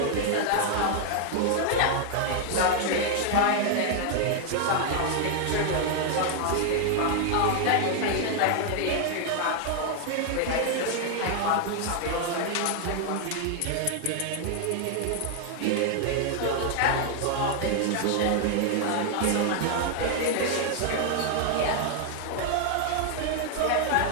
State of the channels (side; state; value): both; different; correlation 0.00